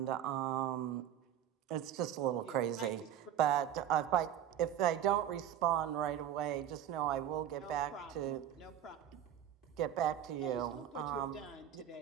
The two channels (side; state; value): left; quieter; 10.5 dB